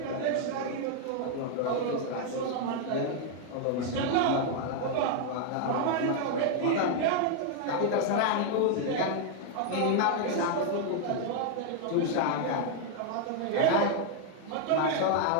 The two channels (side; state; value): both; different; correlation 0.00